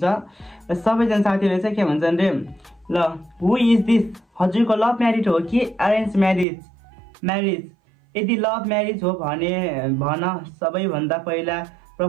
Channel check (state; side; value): drops out; left; at 6.5 s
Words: सबैजना साथीहरूले चाहिँ के भन्छन् रे ल हु इज दिस हजुरको लभ म्यारिज हो कि अरेन्ज म्यारिज यदि लभ म्यारिज हो भने भन सबैभन्दा पहिला